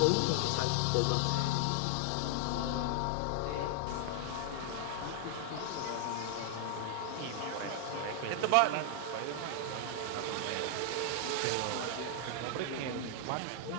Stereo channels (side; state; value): both; different; correlation 0.00